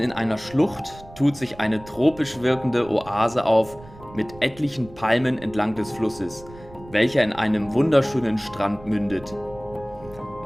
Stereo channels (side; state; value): right; noise; rumble, 20 dB below the sound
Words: einer Schlucht tut sich eine tropisch wirkende Oase auf mit etlichen Palmen entlang des Flusses, welcher in einem wunderschönen Strand mündet.